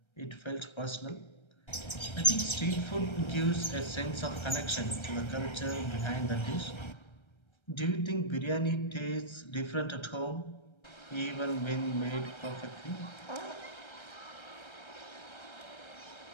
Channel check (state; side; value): late; right; 1.3 ms